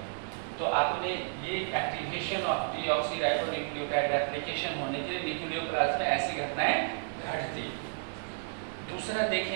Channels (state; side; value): silent; left; 55 dB below the other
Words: तो आपने ये एक्टिवेशन ऑफ डीऑक्सीराइबोन्यूक्लियोटाइड रेप्लिकेशन होने के लिए न्यूक्लियोप्लाज्म में ऐसी घटनाएं घटती। दूसरा